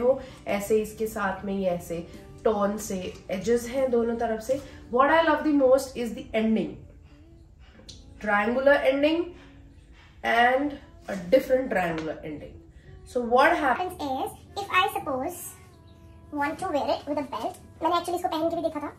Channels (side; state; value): both; identical; correlation 1.00